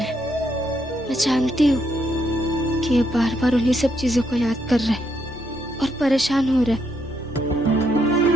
मैं जानती हूँ कि ये बार बार उन्हीं सब चीजों को याद कर रहे हैं और परेशान हो रहे हैं।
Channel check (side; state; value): both; normal; correlation 0.76